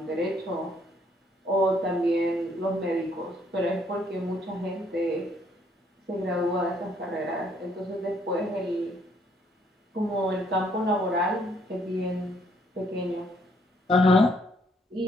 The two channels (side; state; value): both; normal; correlation 0.67